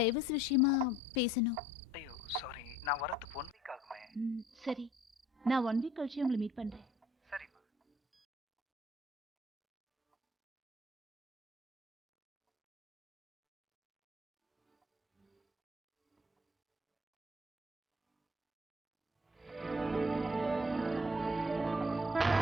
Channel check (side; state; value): both; normal; correlation 0.57